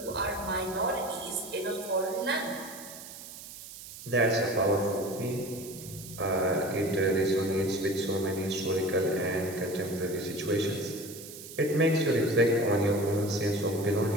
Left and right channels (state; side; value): noise; right; hiss, 14 dB below the sound